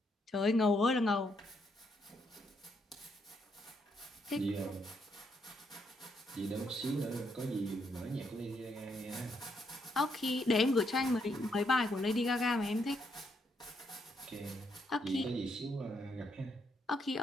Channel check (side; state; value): both; normal; correlation 0.76